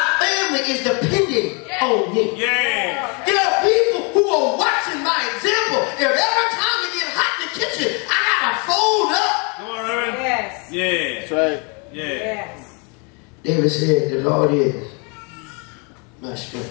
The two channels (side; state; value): right; quieter; 33.5 dB